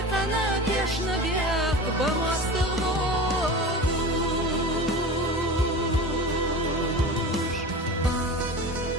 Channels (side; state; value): both; normal; correlation 0.32